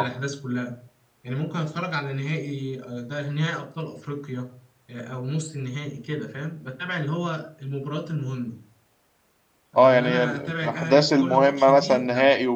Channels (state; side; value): identical; both; correlation 1.00